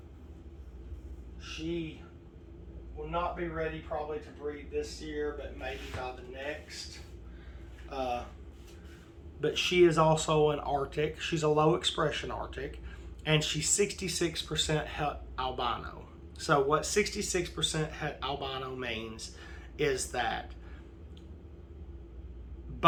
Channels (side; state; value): both; identical; correlation 1.00